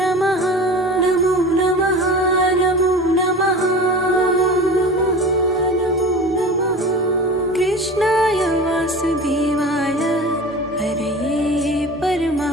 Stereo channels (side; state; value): both; normal; correlation 0.35